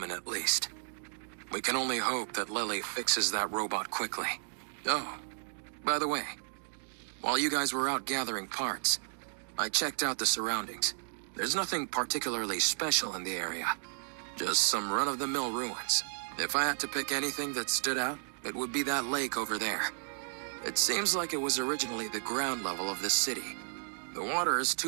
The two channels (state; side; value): silent; left; digital silence